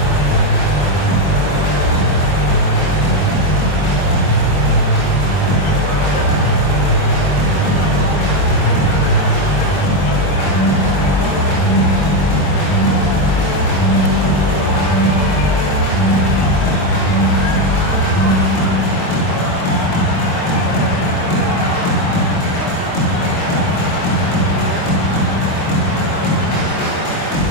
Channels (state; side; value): late; right; 22 ms